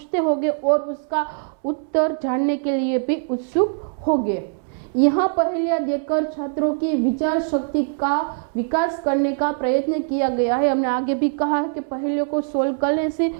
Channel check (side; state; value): left; silent; 64 dB below the other